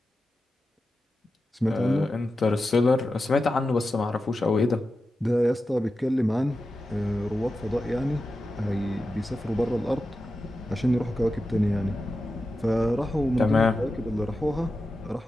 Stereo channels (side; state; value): both; normal; correlation 0.92